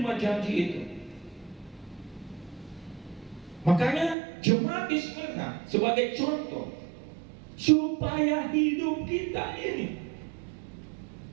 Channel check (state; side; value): drops out; left; at 4.2 s